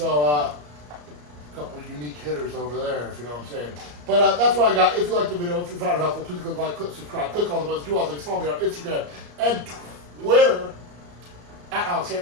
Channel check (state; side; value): late; left; 34 ms